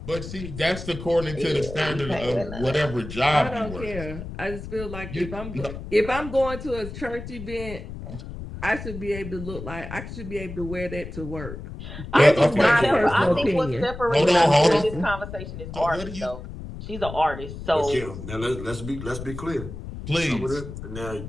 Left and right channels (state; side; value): noise; left; rumble, 10 dB below the sound